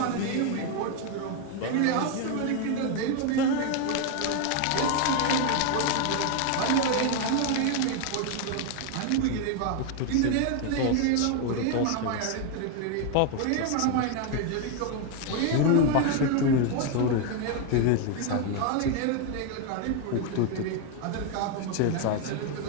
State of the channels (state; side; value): different; both; correlation 0.01